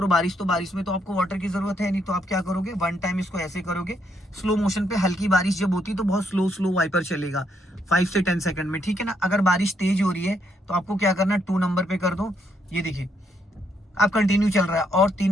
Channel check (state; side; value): normal; both; correlation 0.74